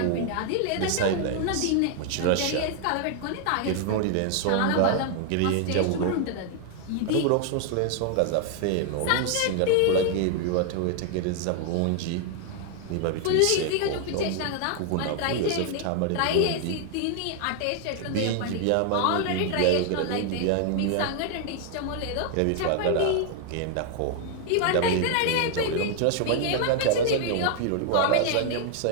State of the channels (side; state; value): both; different; correlation 0.00